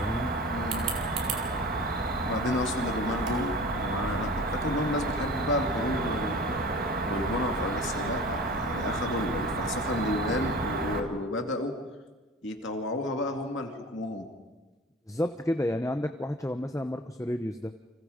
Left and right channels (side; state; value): both; normal; correlation 0.40